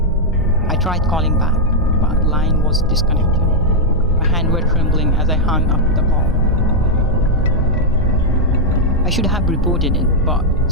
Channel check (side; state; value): both; normal; correlation -0.03